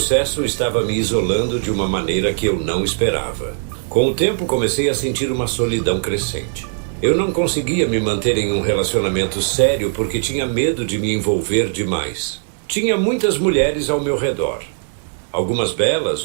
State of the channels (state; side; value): silent; left; digital silence